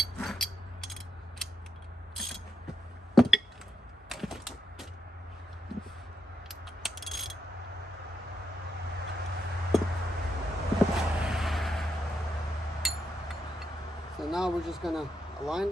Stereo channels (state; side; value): normal; both; correlation 0.81